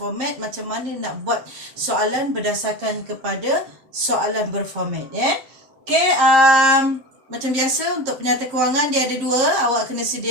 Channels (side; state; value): left; late; 7.4 ms